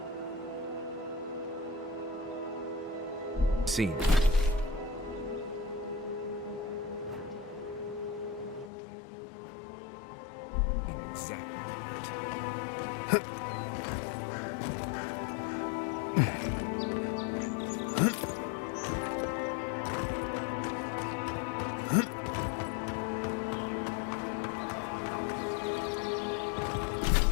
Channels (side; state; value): right; drops out; at 8.7 s